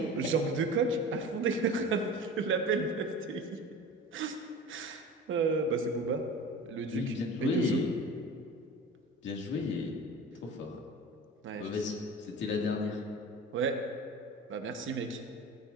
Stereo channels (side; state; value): both; normal; correlation 0.36